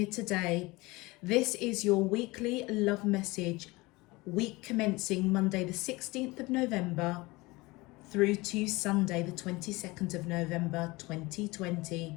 today. This is your weekly love message, week commencing Monday the 16th of November through to Sunday the 22nd of November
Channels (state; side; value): quieter; right; 22.6 dB